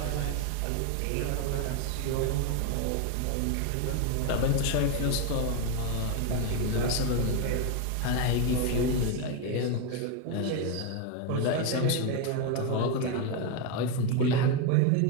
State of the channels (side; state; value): both; different; correlation 0.02